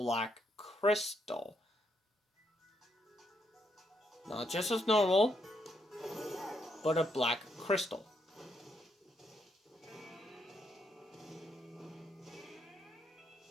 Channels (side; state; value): both; normal; correlation 0.76